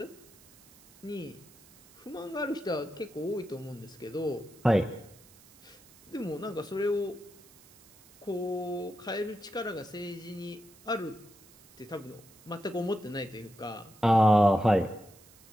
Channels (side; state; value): right; noise; hiss, 25 dB below the sound